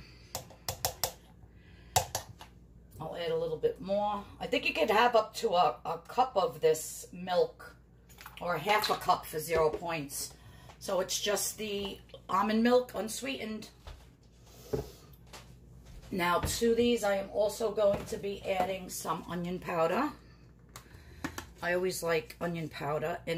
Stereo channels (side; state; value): both; identical; correlation 1.00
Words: I'll add a little bit more. I think you could have up to a cup of this milk, or half a cup for 0 points. So it's just the almond milk, unsweetened. Now to these, I am also going to be adding some onion powder. I always like onion powder